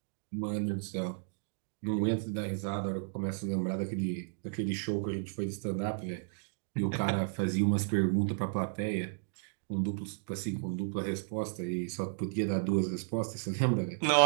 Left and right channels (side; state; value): left; silent; digital silence